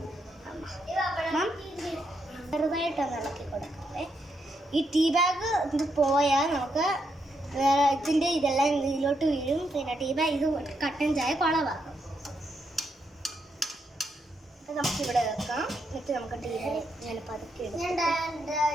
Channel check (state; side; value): normal; both; correlation 0.80